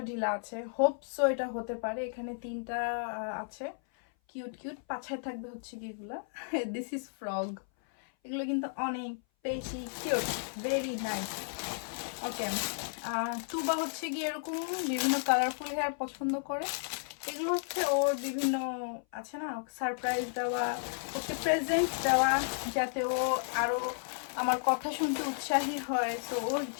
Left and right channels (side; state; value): right; silent; 56 dB below the other